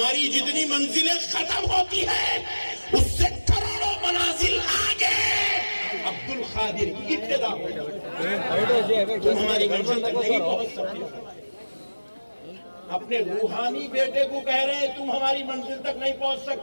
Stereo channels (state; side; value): inverted; both; correlation -1.00